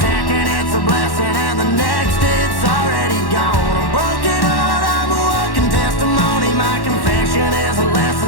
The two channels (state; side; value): late; right; 1.1 ms